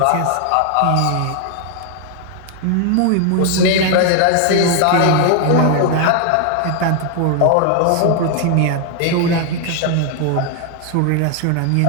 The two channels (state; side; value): different; both; correlation 0.00